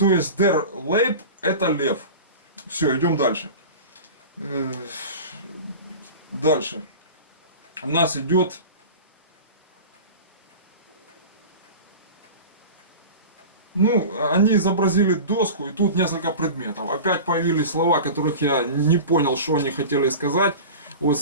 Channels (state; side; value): inverted; both; correlation -0.33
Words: есть der Leib это лев. Все, идем дальше. Дальше. У нас идет они изобразили доску, и тут несколько предметов. Опять появились слова, которых я не понял, что они хотели сказать. Вот